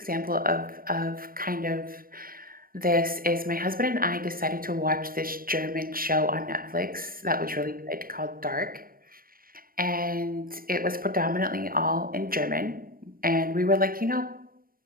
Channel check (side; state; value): left; late; 0.42 ms